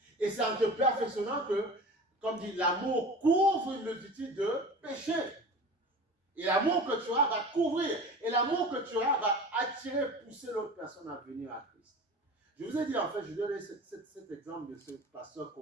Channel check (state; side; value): normal; both; correlation 0.36